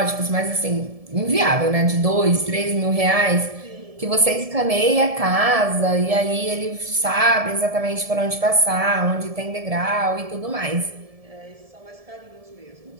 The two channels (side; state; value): left; late; 1.7 ms